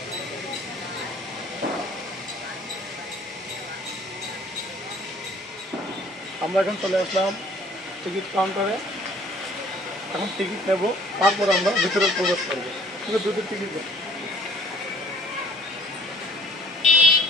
আমরা এখন চলে আসলাম টিকিট কাউন্টারে। এখন টিকিট নেব, তারপর আমরা ভিতরে প্রবেশ করবো। কিন্তু দুটো টিকিট দেব।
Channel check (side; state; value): both; normal; correlation 0.56